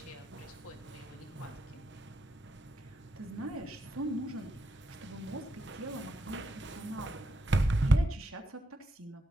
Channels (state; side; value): normal; both; correlation 0.82